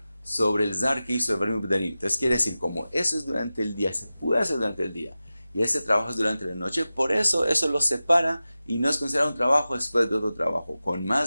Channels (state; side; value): inverted; both; correlation -0.95